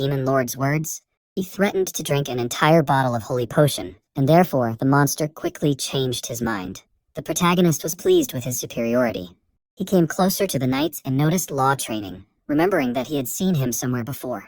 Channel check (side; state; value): both; identical; correlation 1.00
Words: lord's words, he threatened to drink an entire bottle of holy potion, and therefore the monster quickly changed his mind. The protagonist was pleased with his superiority. He came closer to the knights and noticed Law training, remembering that he had seen him somewhere